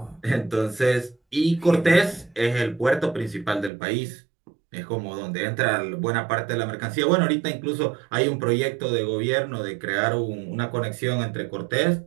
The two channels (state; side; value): drops out; left; at 3.7 s